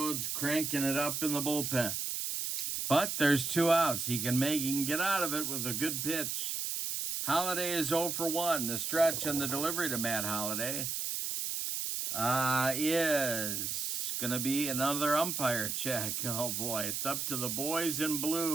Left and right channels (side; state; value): right; noise; hiss, 2 dB below the sound